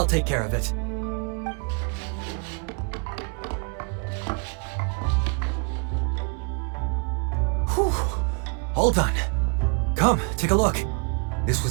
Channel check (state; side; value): quieter; left; 35.4 dB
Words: take care of it. Whew. All done. Come, take a look. This